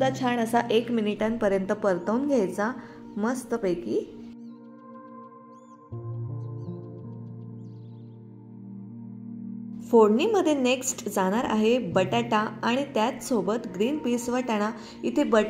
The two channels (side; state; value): both; identical; correlation 1.00